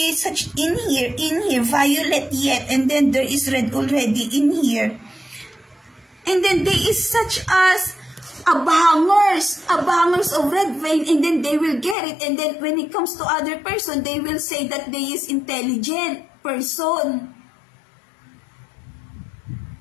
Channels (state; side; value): drops out; right; at 12.0 s